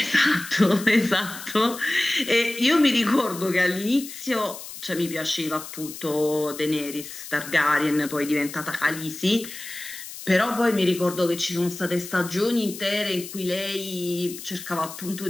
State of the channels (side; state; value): left; noise; hiss, 12 dB below the sound